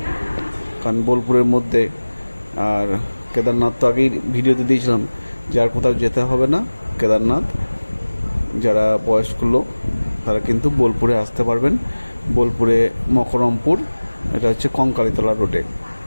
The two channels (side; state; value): both; inverted; correlation -1.00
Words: কারণ বোলপুরের মধ্যে। আর কেদারনাথ তো আগেই ভিডিওতে দিয়েছিলাম, যার কোথাও যেতে হবে না কেদারনাথ, যারা বয়স্ক লোক তারা কিন্তু বোলপুরে আসতে পারবেন। বোলপুরে মকরমপুর, এটা হচ্ছে কঙ্কালীতলা রোডে,